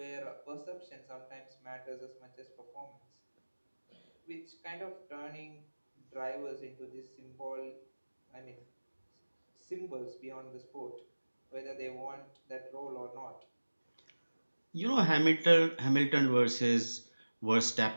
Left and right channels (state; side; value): inverted; both; correlation -1.00